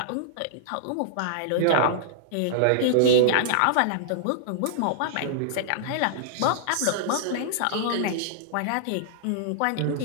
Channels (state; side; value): different; both; correlation -0.02